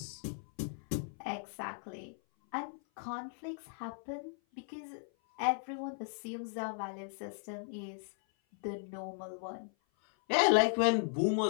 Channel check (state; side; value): silent; right; 53 dB below the other